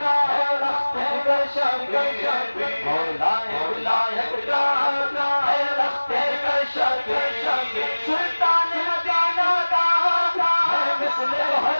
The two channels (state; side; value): inverted; both; correlation -1.00